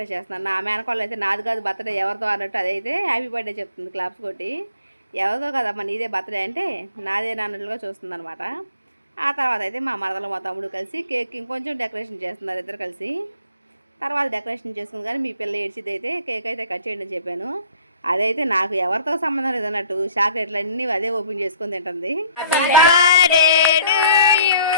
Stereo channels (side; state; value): both; inverted; correlation -0.57